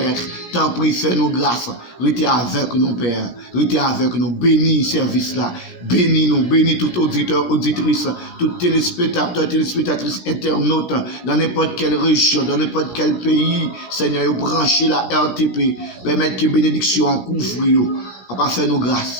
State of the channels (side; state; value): right; late; 16 ms